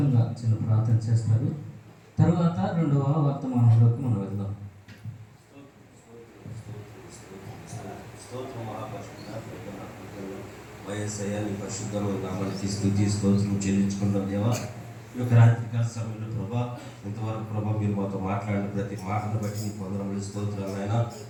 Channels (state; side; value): identical; both; correlation 1.00